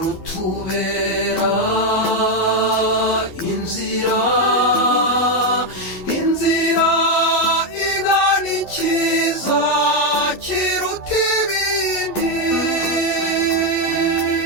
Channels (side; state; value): right; late; 11 ms